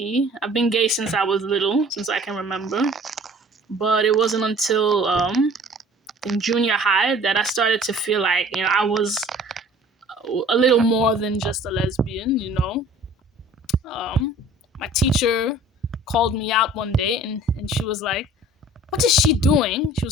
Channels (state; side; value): normal; both; correlation 0.49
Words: I've been gay since I was little, since I can remember. But it wasn't until in junior high that I started to feel like, I was a little more than just a lesbian. My teacher called me out one day, and she was like, "What is she doing?" She